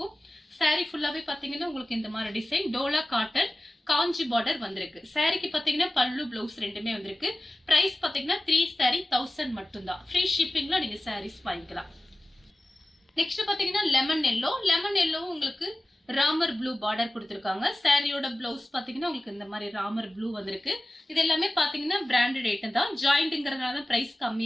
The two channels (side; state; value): both; normal; correlation 0.96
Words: saree ஃபுல்லாவே பாத்தீங்கன்னா உங்களுக்கு இந்த மாதிரி டிசைன் டோலா காட்டன் காஞ்சி பார்டர் வந்திருக்கு. சாரிக்கு பாத்தீங்கன்னா பல்லு பிளவுஸ் ரெண்டுமே வந்திருக்கு. பிரைஸ் பாத்தீங்கன்னா 3 saree 1000 மட்டும் தான். ஃப்ரீ ஷிப்பிங்ல நீங்க sarees வாங்கிக்கலாம். நெக்ஸ்ட் பாத்தீங்கன்னா லெமன் எல்லோ உங்களுக்கு ராமர் ப்ளூ பார்டர் கொடுத்திருக்காங்க. சாரியோட பிளவுஸ் பாத்தீங்கன்னா உங்களுக்கு இந்த மாதிரி ராமர் ப்ளூ வந்திருக்கு. இது எல்லாமே பாத்தீங்கன்னா பிராண்டட் ஐட்டம் தான். ஜாயிண்ட்ங்கறதுனால தான் பிரைஸ்